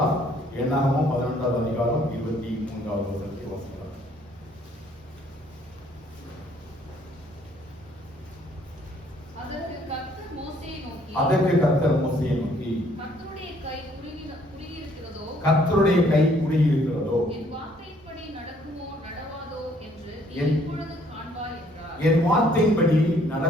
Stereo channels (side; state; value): both; normal; correlation 0.63